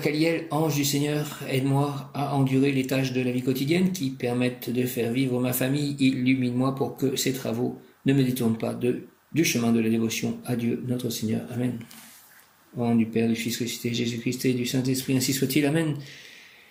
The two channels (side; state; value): both; identical; correlation 1.00